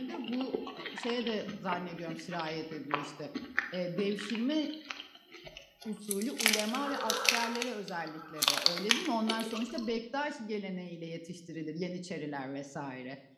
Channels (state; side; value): identical; both; correlation 1.00